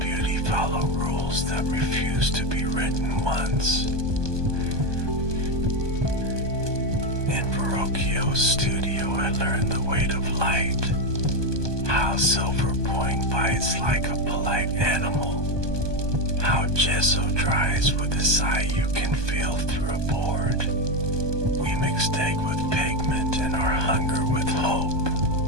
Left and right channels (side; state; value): left; late; 1.2 ms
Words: follow rules that refuse to be written once? In Verrocchio's studio, I learned the weight of light, how silver point bites like a polite animal, how gesso dries with a sigh you can feel through a board. We mixed egg with pigment and our hunger with hope.